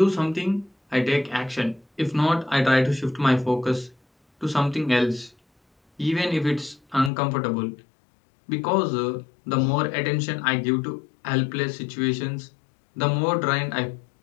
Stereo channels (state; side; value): drops out; right; at 7.1 s